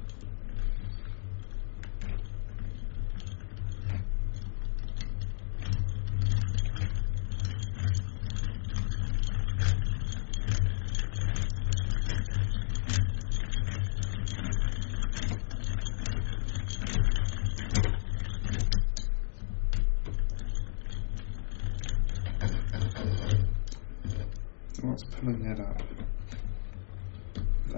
What's pulling that up?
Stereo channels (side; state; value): right; silent; digital silence